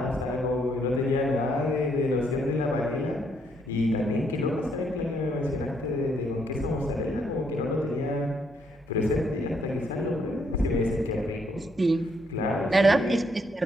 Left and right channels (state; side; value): normal; both; correlation 0.72